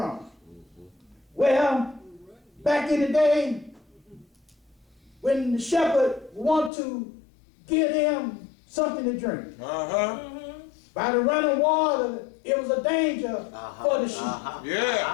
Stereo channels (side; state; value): right; drops out; at 6.7 s